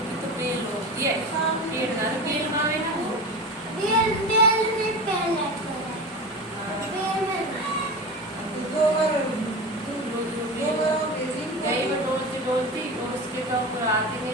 तो बेल होती है, पेड़ ना बेल मावे ना वो, डोलती और उसके ऊपर आगे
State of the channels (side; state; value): both; normal; correlation 0.28